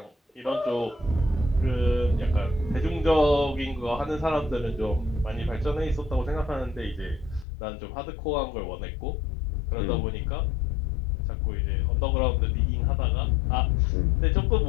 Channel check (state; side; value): drops out; right; at 7.5 s